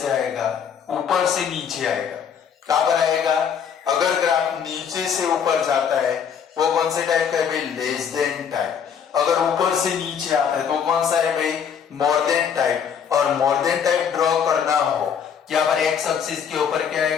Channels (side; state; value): right; quieter; 7.5 dB